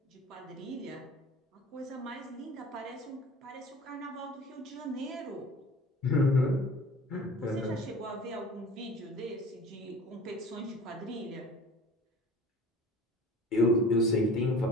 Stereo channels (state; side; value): normal; both; correlation 0.43